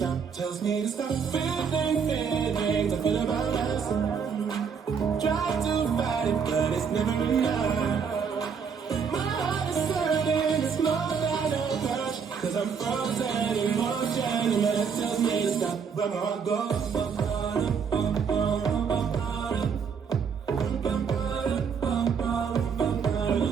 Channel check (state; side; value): quieter; left; 6.4 dB